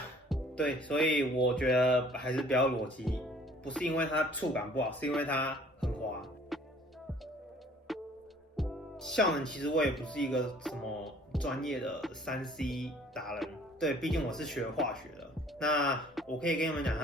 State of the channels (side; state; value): both; normal; correlation 0.55